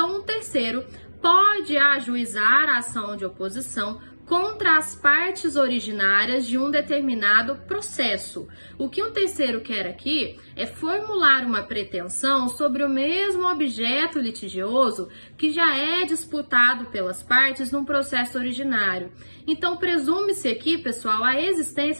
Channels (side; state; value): both; inverted; correlation -1.00